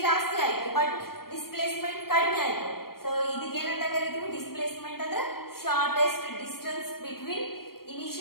ಜಾಸ್ತಿ ಆಯ್ತು ಬಟ್ ಡಿಸ್ಪ್ಲೇಸ್ಮೆಂಟ್ ಕಡಿಮೆ ಆಯ್ತು. ಸೊ ಇದಕ್ಕೆ ಏನಂತ ಕರಿತೀವಿ? ಡಿಸ್ಪ್ಲೇಸ್ಮೆಂಟ್ ಅಂದ್ರೆ shortest distance between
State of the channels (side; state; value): right; late; 0.94 ms